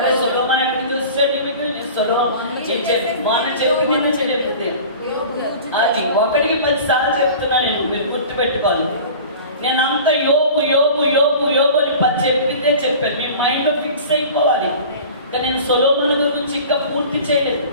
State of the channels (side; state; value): both; inverted; correlation -0.39